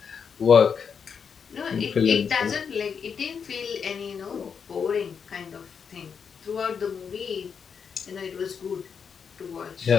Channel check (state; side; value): quieter; right; 6.5 dB